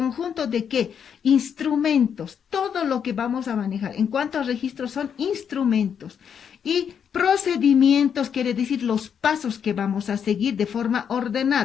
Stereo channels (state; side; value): quieter; right; 7.7 dB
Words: de qué? Instrumentos, todo lo que vamos a manejar. En cuanto a registros, son instrumentos. Y procedimientos, quiere decir los pasos que vamos a seguir de forma